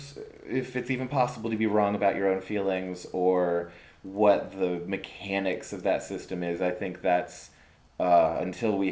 if it's even possible to be wrong about your own feelings or what the mechanics of that system is. I think that's, until we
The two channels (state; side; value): identical; both; correlation 1.00